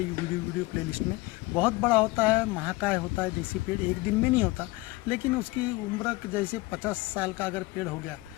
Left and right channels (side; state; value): right; quieter; 21.6 dB